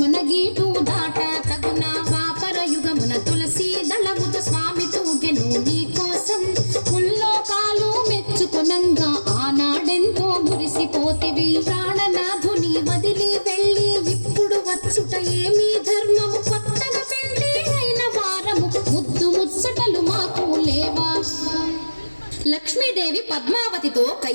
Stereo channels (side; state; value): both; inverted; correlation -1.00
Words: గీటు దాట తగున. ద్వాపర యుగమున తులసి దళముతో స్వామి తూగెను నీ కోసం. ముల్లోకాలు మెచ్చుకొనంగా ఆనాడెంతో మురిసిపోతివి. ప్రాణనాథుని వదిలి వెళ్ళి ఇప్పుడు వచ్చుట ఏమీ ధర్మము. కొత్తగా పెళ్లి అయిన వారము ముద్దు ముచ్చటలు మాకు లేవా. లక్ష్మీదేవి పద్మావతితో